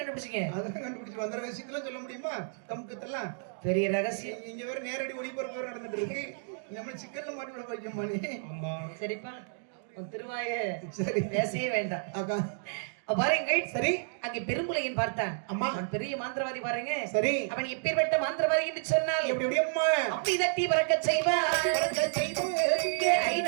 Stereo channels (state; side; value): silent; left; digital silence